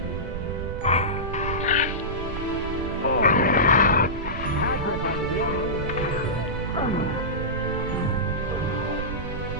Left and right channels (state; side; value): noise; right; rumble, 6 dB below the sound